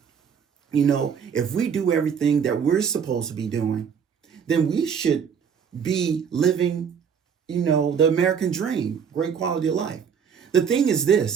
if we do everything that we're supposed to be doing, then we should be living, the American dream, great quality of life. The thing is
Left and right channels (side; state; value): left; quieter; 7.1 dB